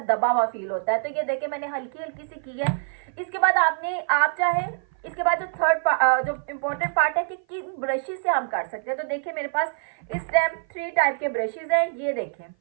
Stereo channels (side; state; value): left; silent; 55 dB below the other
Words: दबा हुआ फील होता है। तो ये देखिए, मैंने हल्की हल्की सी की है। इसके बाद आप चाहे इसके बाद जो जो इम्पोर्टेंट पार्ट है कि किन ब्रशेस से हम कर सकते हैं। तो देखिए, मेरे पास इस टाइम 3 टाइप के ब्रशेस हैं। ये देखें,